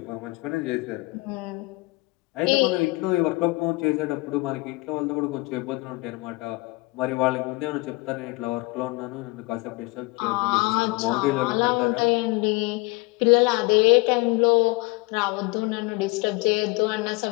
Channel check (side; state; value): right; quieter; 24.7 dB